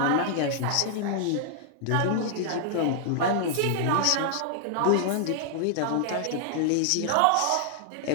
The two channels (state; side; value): different; both; correlation -0.01